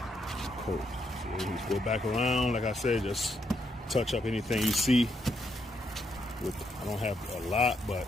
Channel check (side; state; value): both; normal; correlation 0.77